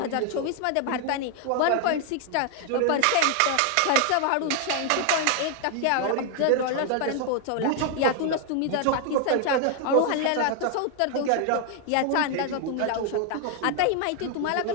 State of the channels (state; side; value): different; both; correlation 0.00